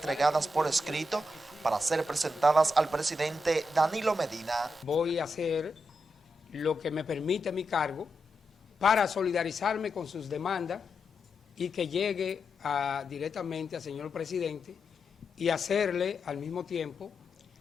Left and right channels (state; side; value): normal; both; correlation 0.86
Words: por escrito para ser presentadas al presidente Danilo Medina. Voy a hacer lo que me permite mi cargo para solidarizarme con sus demandas y que llegue directamente al señor presidente y hacerle al mismo tiempo